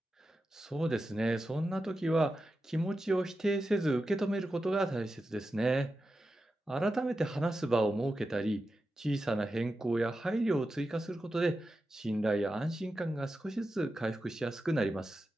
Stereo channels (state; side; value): normal; both; correlation 0.91